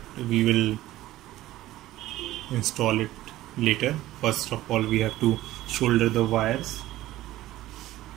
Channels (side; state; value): left; quieter; 15.6 dB